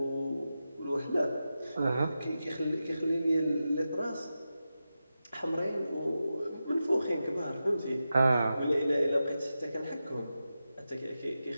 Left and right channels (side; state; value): both; inverted; correlation -0.91